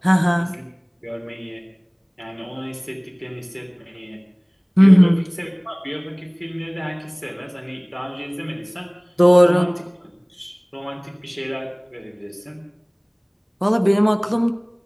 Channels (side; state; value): both; identical; correlation 1.00